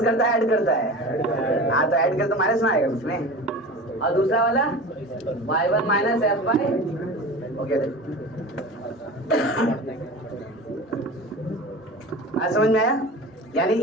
करता है ऐड करता है? हाँ तो ऐड कर तो माइनस ना आएगा उसमें। और दूसरा वाला y1 minus f bye, okay आज समझ में आया? यानी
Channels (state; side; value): normal; both; correlation 0.34